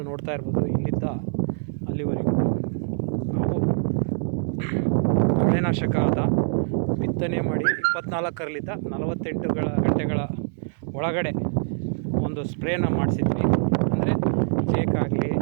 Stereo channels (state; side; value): silent; left; digital silence